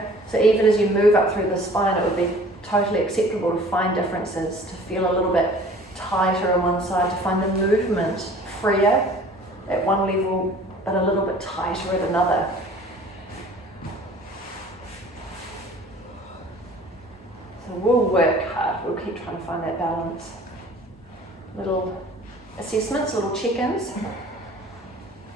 So even as you move up through the spine, it would be totally acceptable to find differences, to feel a little bit tighter on one side, to find the movement freer at one level, but a little bit tighter at another. So we'll work hard, we'll keep trying to find that balance. Little assessments, little check-ins.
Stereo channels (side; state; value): both; normal; correlation 0.49